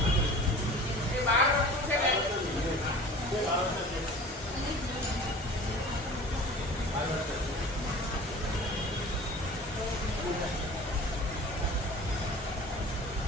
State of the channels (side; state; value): both; normal; correlation 0.42